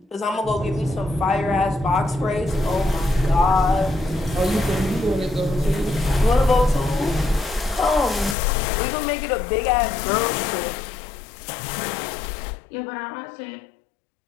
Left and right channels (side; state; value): right; drops out; at 8.3 s